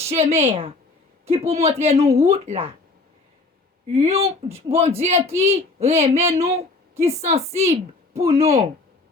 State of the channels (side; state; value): right; quieter; 3.5 dB